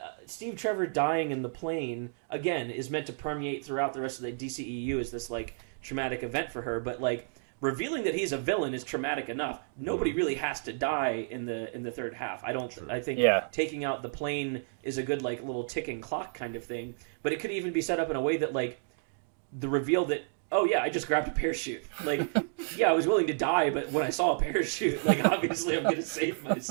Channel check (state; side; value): silent; left; digital silence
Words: Steve Trevor dying in the plane again is meant to permeate throughout the rest of the DCEU as this like traumatic event for her, but like revealing that he's a villain is traumatic enough. Nobody really has to die in the third half. I think taking out the plane is a good like little ticking clock kind of thing, but it could even be set up in a way that like the reveal that, oh yeah, I just grabbed a parachute. Like, yeah, I was willing to die, but when I saw a parachute, like obviously I'm gonna save